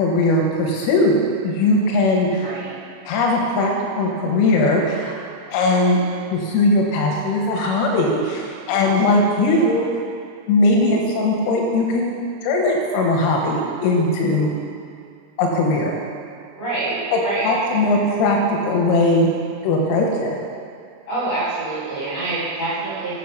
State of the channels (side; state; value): right; late; 26 ms